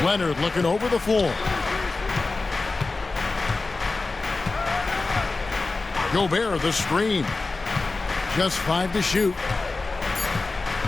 Leonard looking over the floor. Gobert the screen. Just 5 to shoot.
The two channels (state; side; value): quieter; right; 3.6 dB